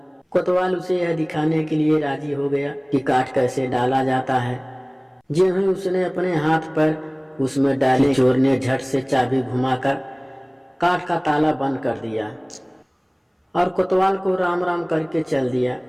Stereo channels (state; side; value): identical; both; correlation 1.00